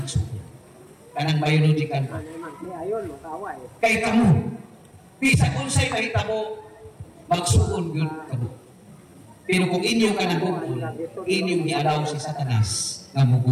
Kanang biological pa. Kay kamo, bisa kung sa'y kahita mo, magsuon yun kamo. Pero kung inyo ka nagugul, inyong ialaw si Satanas na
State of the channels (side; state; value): both; identical; correlation 1.00